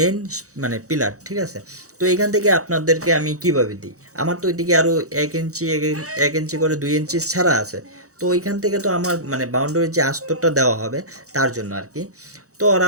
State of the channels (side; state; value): left; late; 0.65 ms